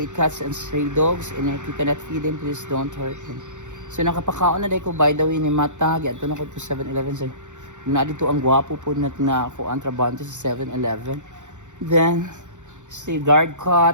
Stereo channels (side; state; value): left; late; 0.85 ms